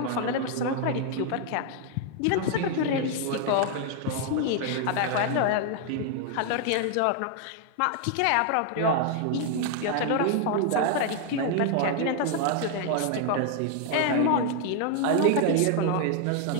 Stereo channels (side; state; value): both; different; correlation 0.00